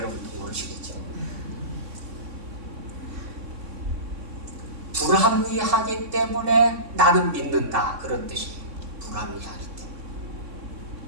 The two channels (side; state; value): left; late; 3.6 ms